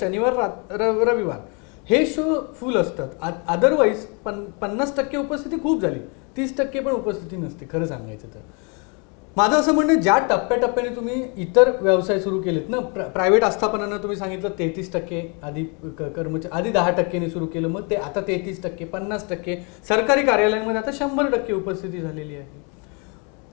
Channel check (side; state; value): right; quieter; 34.2 dB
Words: शनिवार रविवार हे शो फुल असतात. अदरवाईज 50% उपस्थिती खूप झाली, 30% पण उपस्थिती नसते खरं सांगायचं तर. माझं असं म्हणणं, ज्या टप्प्याटप्प्याने तुम्ही इतर व्यवसाय सुरू केलेत ना, प्रायव्हेट आस्थापनांना तुम्ही सांगितलं 33% आधी कर्मचारी, आधी 10%ने सुरू केलं, मग ते आता 33%, 50%, सरकारी कार्यालयांमध्ये आता 100% उपस्थिती झालेली आहे.